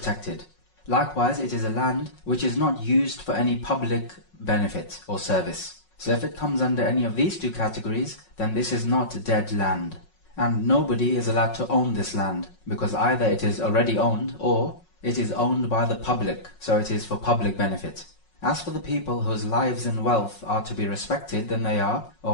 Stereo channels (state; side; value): late; right; 5.5 ms